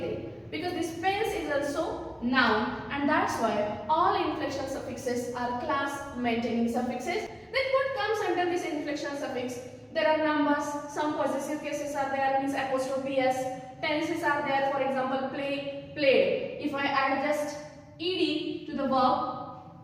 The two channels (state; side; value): identical; both; correlation 1.00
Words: because this pens is also noun, and that's why all inflectional suffixes are class maintaining suffixes. Then what comes under this inflectional suffix? There are numbers, some possessive cases are there, means apostrophe s, tenses are there, for example play, played. If I add just ed to the